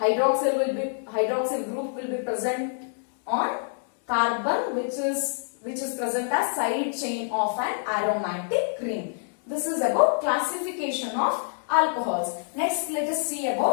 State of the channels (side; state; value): right; silent; digital silence